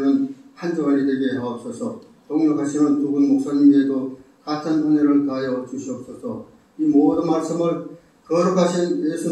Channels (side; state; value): both; identical; correlation 1.00